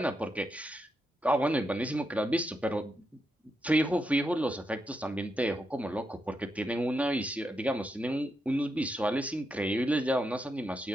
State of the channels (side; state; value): both; normal; correlation 0.83